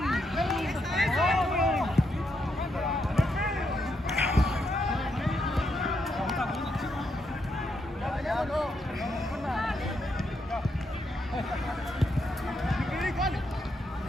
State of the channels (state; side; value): normal; both; correlation 0.80